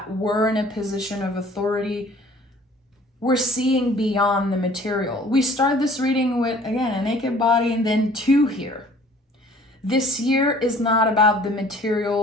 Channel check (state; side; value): normal; both; correlation 0.53